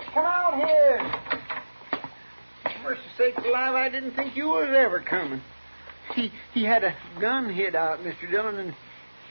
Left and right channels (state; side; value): inverted; both; correlation -1.00